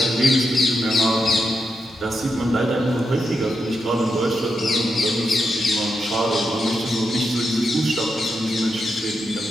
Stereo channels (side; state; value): both; normal; correlation 0.84